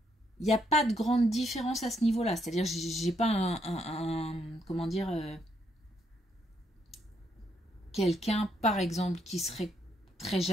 il n'y a pas de grande différence à ce niveau-là. C'est-à-dire, j'ai pas comment dire, quelqu'un, par exemple, qui serait très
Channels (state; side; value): normal; both; correlation 0.74